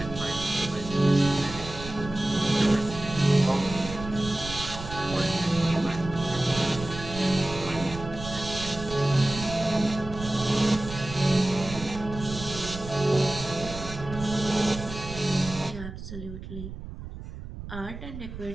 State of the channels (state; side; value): noise; right; rumble, 10 dB below the sound